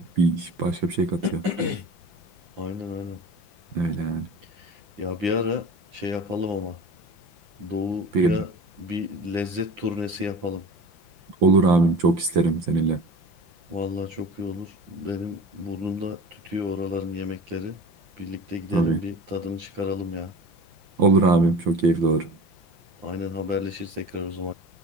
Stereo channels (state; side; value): late; left; 5.9 ms